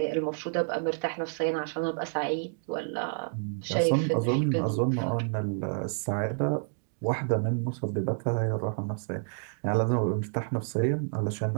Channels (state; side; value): silent; left; digital silence